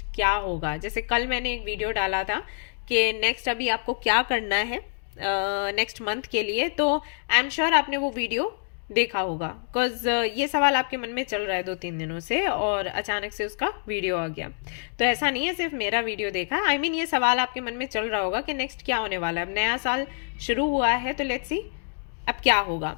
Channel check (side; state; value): right; silent; digital silence